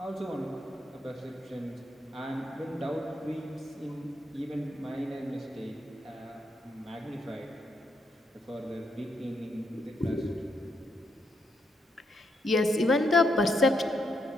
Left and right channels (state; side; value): normal; both; correlation 0.78